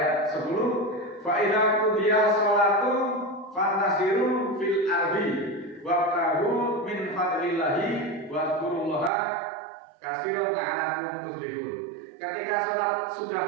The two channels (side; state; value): left; drops out; at 9.1 s